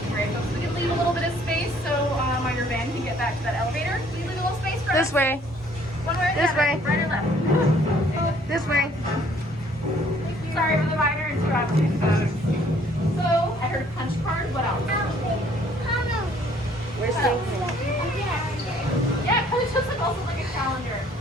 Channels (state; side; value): normal; both; correlation 0.60